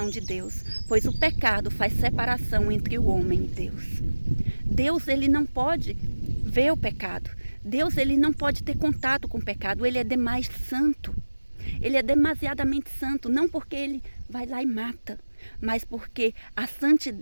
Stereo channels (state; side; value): inverted; both; correlation -1.00